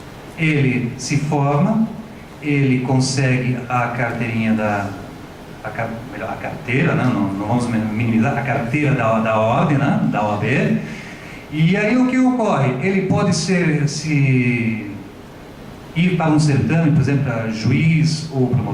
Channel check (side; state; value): both; identical; correlation 1.00